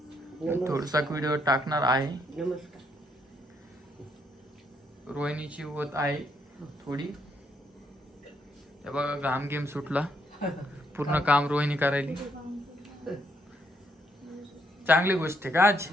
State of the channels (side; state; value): both; normal; correlation 0.74